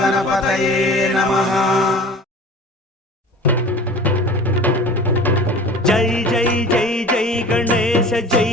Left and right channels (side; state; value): both; normal; correlation 0.41